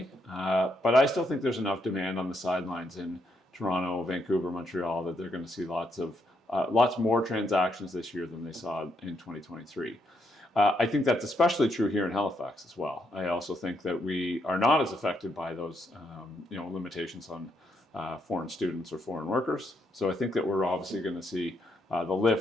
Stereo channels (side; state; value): both; normal; correlation 0.78